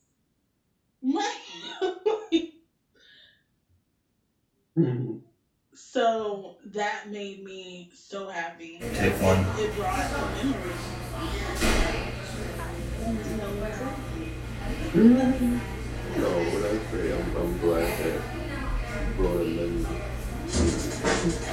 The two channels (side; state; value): both; identical; correlation 1.00